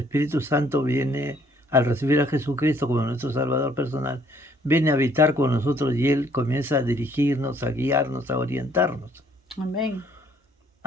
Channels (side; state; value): both; normal; correlation 0.63